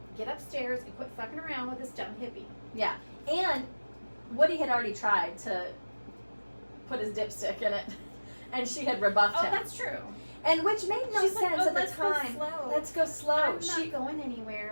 get upstairs and quit fucking around with this dumb hippie. Yeah. And Woody had already tried to put his dipstick in it. And she had rebuffed Oh, him. that's true. And which made no She's sense like, oh, at the let's go time. slow. Let's go slow. I'm not going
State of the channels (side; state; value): both; inverted; correlation -1.00